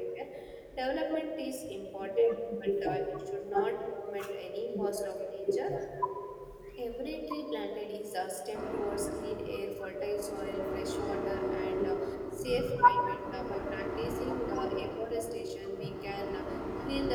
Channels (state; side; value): identical; both; correlation 1.00